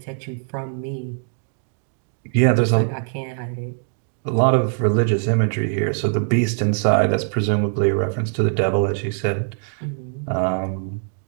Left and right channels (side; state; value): left; silent; digital silence